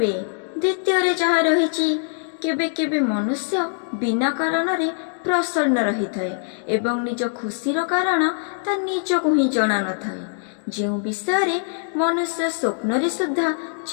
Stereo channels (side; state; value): right; silent; digital silence